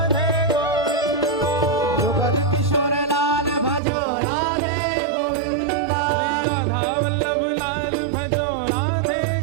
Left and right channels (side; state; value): left; drops out; at 3.8 s